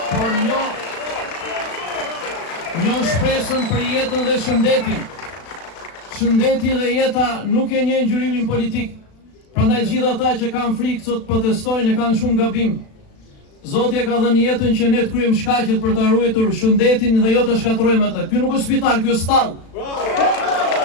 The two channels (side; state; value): right; late; 36 ms